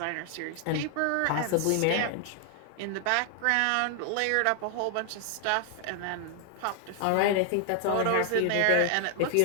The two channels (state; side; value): different; both; correlation 0.00